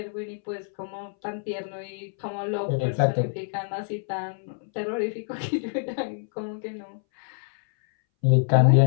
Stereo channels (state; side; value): silent; right; 61 dB below the other